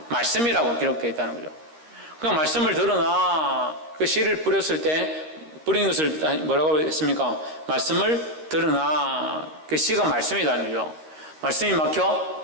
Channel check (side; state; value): left; late; 13 ms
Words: 말씀이라고 기록되어 있다는 거죠. 그 말씀을 들으나 그 씨를 뿌렸을 때 뿌린 것을 뭐라고 했습니까? 말씀을 들으나 그 씨가 말씀이라는 거죠. 말씀이 막혀